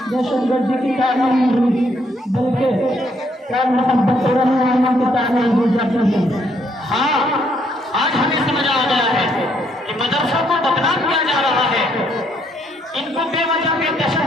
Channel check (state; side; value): normal; both; correlation 0.71